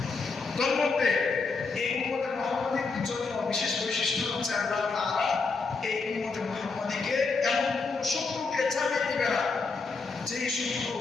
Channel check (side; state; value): right; quieter; 4.3 dB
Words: তার মধ্যে এই উম্মতে মুহাম্মাদির জন্য বিশেষ বৈশিষ্ট্য হচ্ছে আল্লাহ তাআলা এই উম্মতে মুহাম্মাদিকে এমন কোন শত্রুকে ছাড়িয়ে দিবে না যে শত্রু